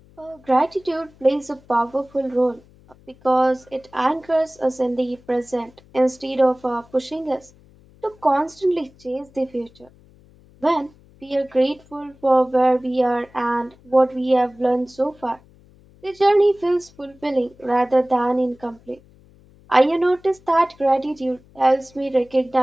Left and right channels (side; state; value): left; noise; hum, 27 dB below the sound